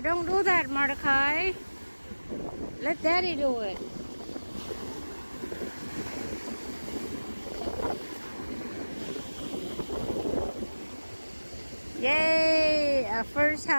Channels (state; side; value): inverted; both; correlation -1.00